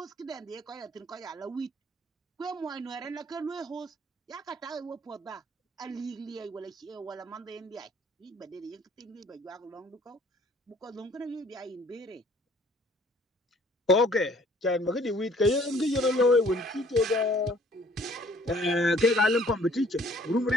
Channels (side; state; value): both; normal; correlation 0.58